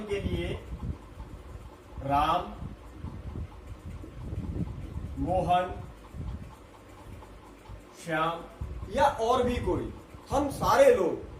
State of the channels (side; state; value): both; identical; correlation 1.00